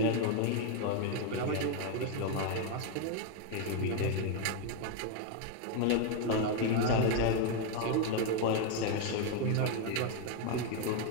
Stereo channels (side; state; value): both; different; correlation 0.01